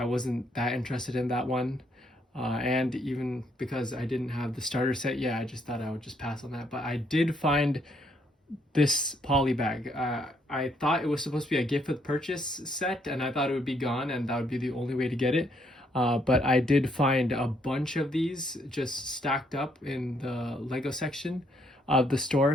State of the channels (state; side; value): normal; both; correlation 0.71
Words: wasn't that interested in that one, and even because I didn't have the starter set, yeah, I just thought I would just pass on that. But I did find this poly bag. I thought it was supposed to be a gift with purchase set, and I thought it would be gone and that would be the only way to get it. But I did find a bunch of these just stacked up in the Lego section of the